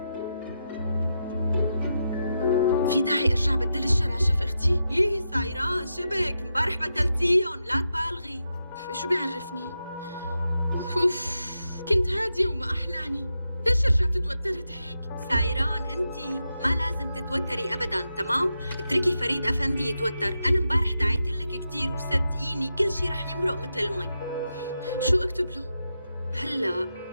في داعي أرجع بدل الشراشف أختي؟ يي سايران شبك امبارح بدلتيهم، لا تبالغي. شو بيعرفني؟ كنت هادية وما أحلاني، ليش رجعت توترت هيك؟ سايران انتي ما لازم تتوتري ابدا، تمام؟ اتركي فريد افندي يتوتر. انا امبارح دعيت لك كثير وصدقيني كل شيء رح يمرق مثل المي. شو اكتب له؟ هلا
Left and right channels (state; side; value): inverted; both; correlation -0.87